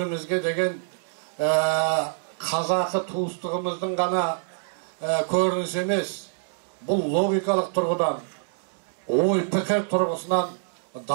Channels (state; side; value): silent; left; digital silence